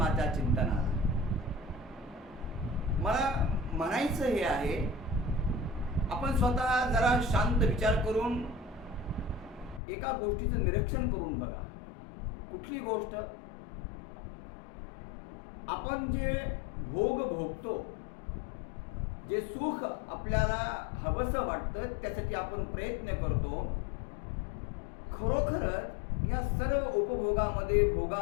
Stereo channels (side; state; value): right; drops out; at 9.8 s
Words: चिंतनाला. मला म्हणायचं हे आहे, आपण स्वतः जरा शांत विचार करून एका गोष्टीचं निरीक्षण करून बघा. कुठली गोष्ट? आपण जे भोग भोगतो, जे सुख आपल्याला हवंसं वाटतं, त्यासाठी आपण प्रयत्न करतो. खरोखरच या सर्व उपभोगामध्ये